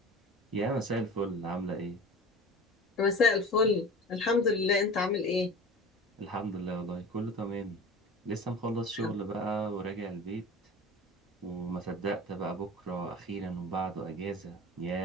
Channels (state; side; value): normal; both; correlation 0.37